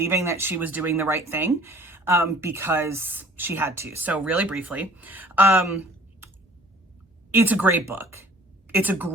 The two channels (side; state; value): both; normal; correlation 0.52